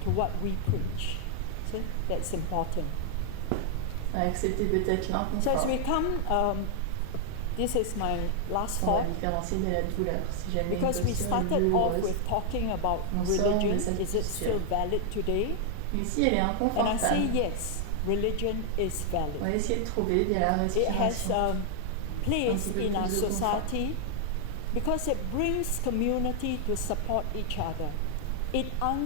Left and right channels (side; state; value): both; different; correlation 0.00